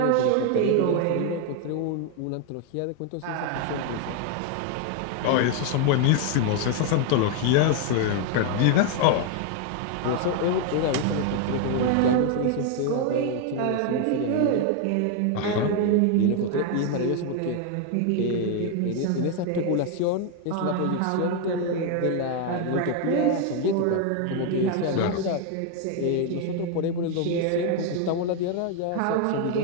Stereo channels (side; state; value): both; different; correlation 0.01